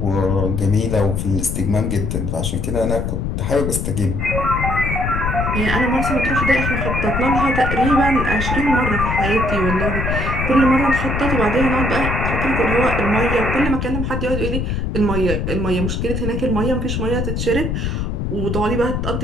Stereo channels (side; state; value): left; noise; rumble, 1 dB below the sound